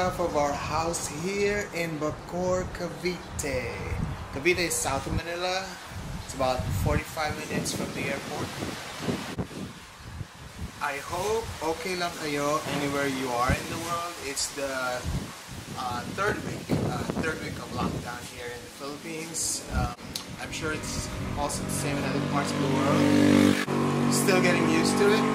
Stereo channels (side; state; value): both; identical; correlation 1.00